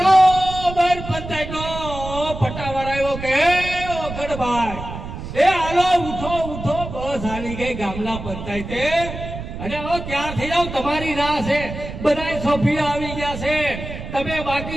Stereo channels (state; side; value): noise; right; rumble, 9 dB below the sound